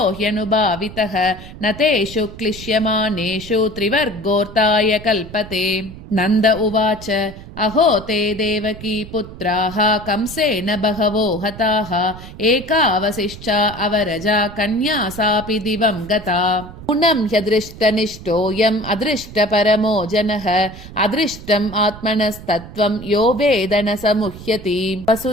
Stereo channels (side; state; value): right; noise; rumble, 15 dB below the sound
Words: ह्यनुभावितः न तेषु क्लिश्यमानेषु त्रिवर्गोऽर्ताय कल्पते नन्द उवाच अहो ते देवकी पुत्राः कंसेन बहवो हताः एकावशिष्टा अवरजा कन्या सापि दिवं गता नूनं ह्यदृष्टनिष्ठोऽयम् अदृष्टपरमो जनः अदृष्टम् आत्मनस्तत्त्वं यो वेद न समुह्यति